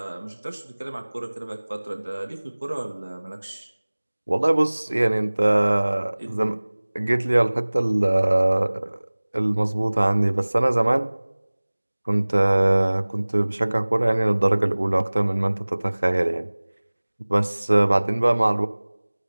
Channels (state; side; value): inverted; both; correlation -1.00